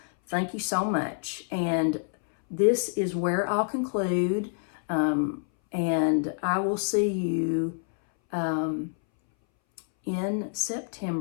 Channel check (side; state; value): right; silent; 60 dB below the other